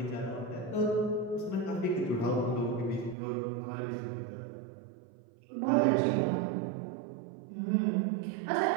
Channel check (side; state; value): left; drops out; at 3.2 s